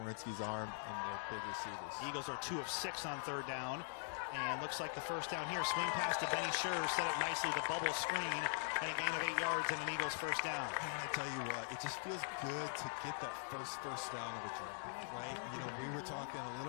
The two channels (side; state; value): right; silent; digital silence